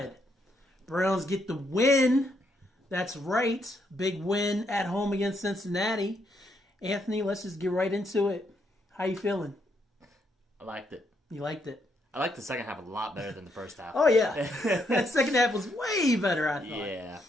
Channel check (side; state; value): both; normal; correlation 0.76